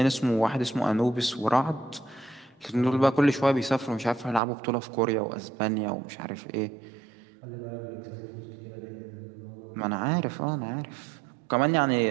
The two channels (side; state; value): left; drops out; at 4.4 s